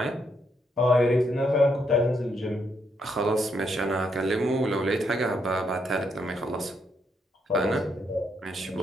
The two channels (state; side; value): normal; both; correlation 0.76